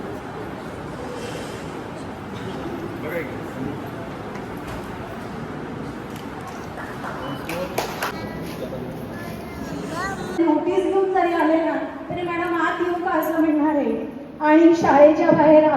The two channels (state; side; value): identical; both; correlation 1.00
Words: नोटीस घेऊन जरी आले ना तरी मॅडम आत येऊ का असं म्हणणार आहे. आणि शाळेच्या बाहेर